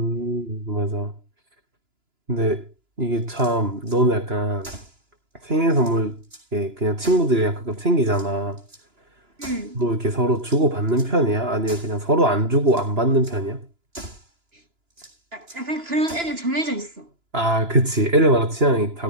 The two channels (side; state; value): left; late; 2.9 ms